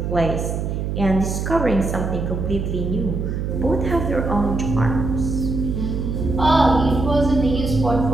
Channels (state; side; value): noise; right; hum, 2 dB below the sound